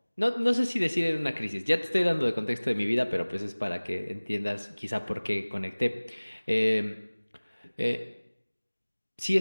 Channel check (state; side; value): inverted; both; correlation -1.00